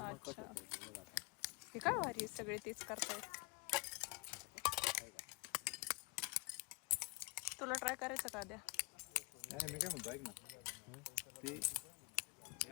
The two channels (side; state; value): right; quieter; 26.2 dB